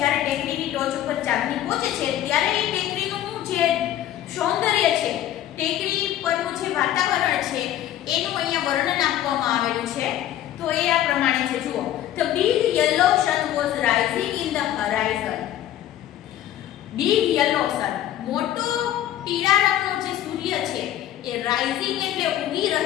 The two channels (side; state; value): right; quieter; 12.4 dB